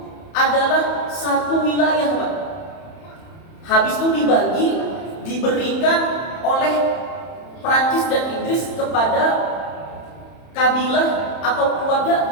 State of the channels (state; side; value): late; right; 31 ms